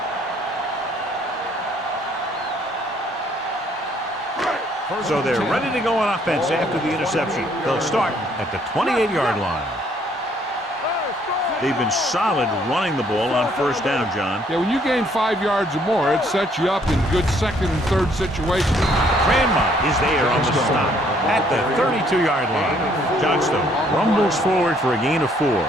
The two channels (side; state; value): both; normal; correlation 0.65